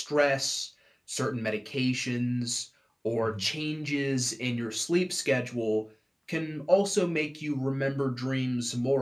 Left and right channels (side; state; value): both; identical; correlation 1.00